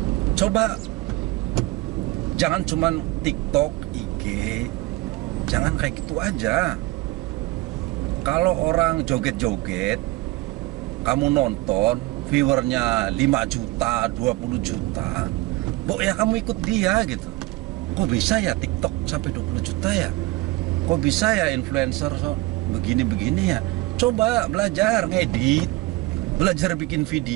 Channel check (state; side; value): quieter; left; 20.4 dB